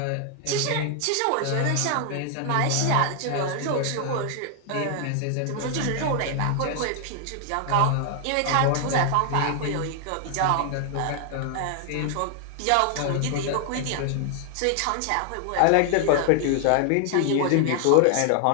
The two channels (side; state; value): both; different; correlation 0.00